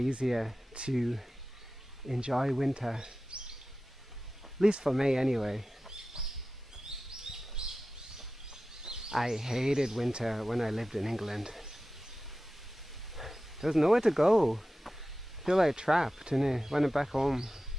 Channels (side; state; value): both; normal; correlation 0.95